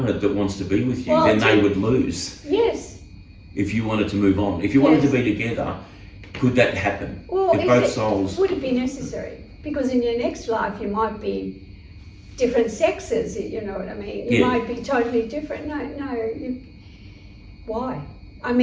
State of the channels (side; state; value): both; identical; correlation 1.00